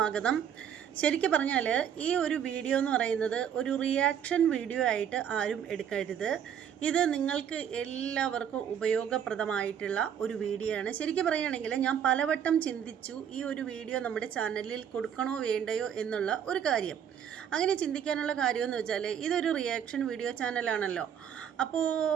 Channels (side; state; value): left; quieter; 8.7 dB